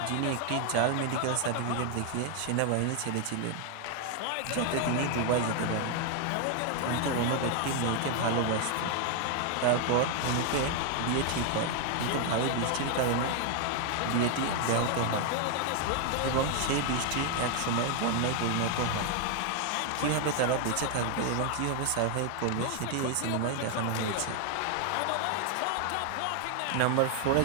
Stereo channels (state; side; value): different; both; correlation 0.00